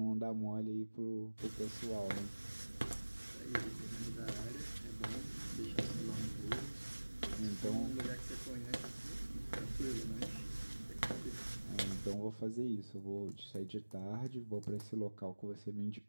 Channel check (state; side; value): inverted; both; correlation -1.00